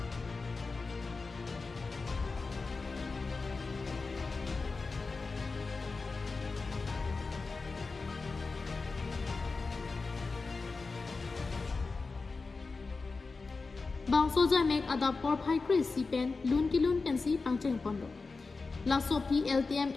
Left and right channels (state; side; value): quieter; right; 4.1 dB